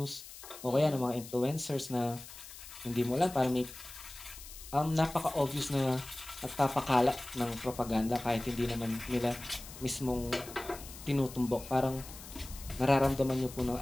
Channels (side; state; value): left; noise; hiss, 15 dB below the sound